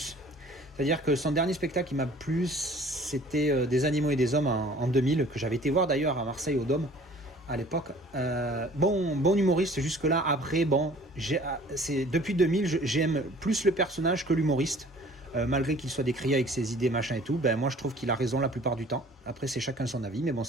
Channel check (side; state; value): both; normal; correlation 0.50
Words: C'est-à-dire que son dernier spectacle qui m'a plu, c'était Des animaux et des hommes en 2000, que j'avais été voir d'ailleurs à Marseille au Dôme. À l'époque, bon humoriste jusque-là. Après, bon, depuis 2000, j'aime plus le personnage que l'humoriste, malgré qu'il soit décrié avec ses idées, machin et tout. Ben moi, je trouve qu'il a raison la plupart du temps. Après, c'est chacun son avis, mais bon,